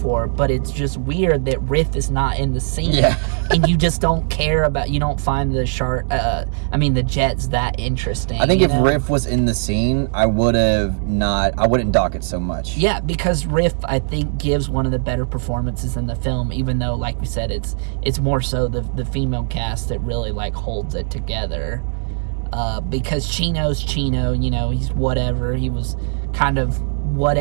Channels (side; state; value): left; silent; digital silence